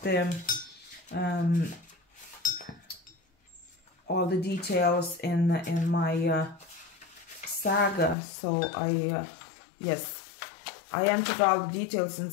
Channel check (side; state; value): right; drops out; at 8.2 s